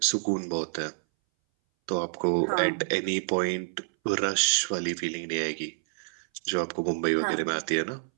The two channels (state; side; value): silent; left; 59 dB below the other